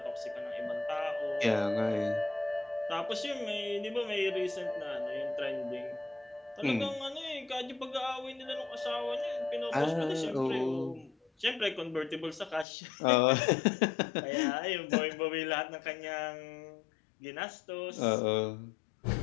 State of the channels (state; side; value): drops out; right; at 12.7 s